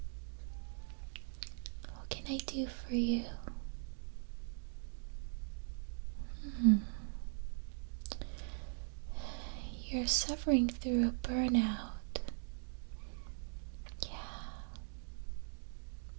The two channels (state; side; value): silent; left; digital silence